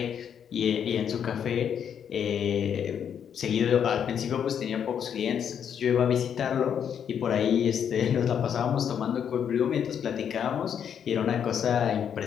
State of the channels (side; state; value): right; quieter; 8.3 dB